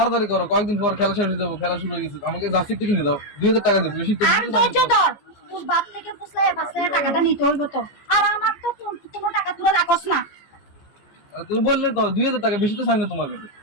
করো, কয়েকদিন পর খেলা শেষ হয়ে যাবো, খেলা শুরু হয়ে গেছে। আমাকে জার্সি একটু কিনে দাও, 2000 টাকা দেবো, বেশি তো আর ধৈর্য ধর, তোর বাপ থেকে ফুসলায় ফাসলায় টাকাটা নিতে হইব তো। আর আমার তো কোনো টাকা তুলে রাখস না। তুমি বললে তো 2000 টাকা, বেশি তো চাই না তোমার কাছে।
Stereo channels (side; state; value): right; late; 14 ms